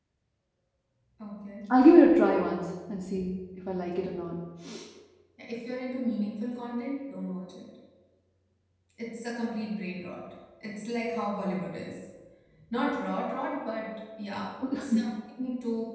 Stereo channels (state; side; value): identical; both; correlation 1.00